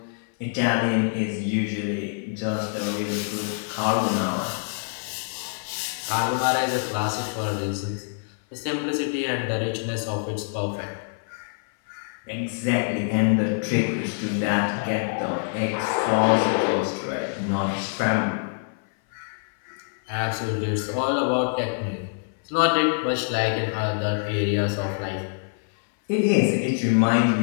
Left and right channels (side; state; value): right; silent; 58 dB below the other